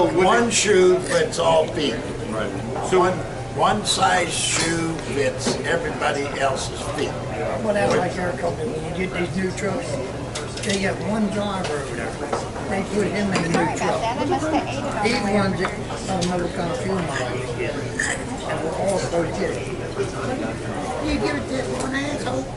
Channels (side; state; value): both; identical; correlation 1.00